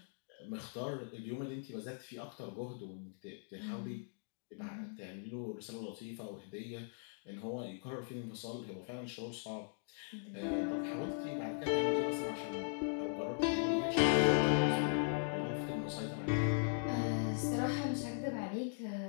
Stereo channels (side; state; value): right; silent; digital silence